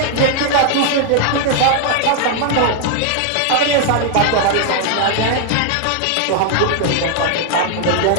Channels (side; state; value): both; different; correlation 0.00